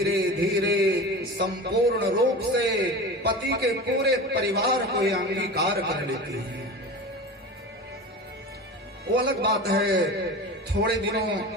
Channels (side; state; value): both; normal; correlation 0.31